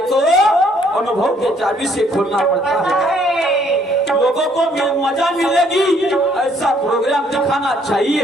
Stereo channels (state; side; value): normal; both; correlation 0.65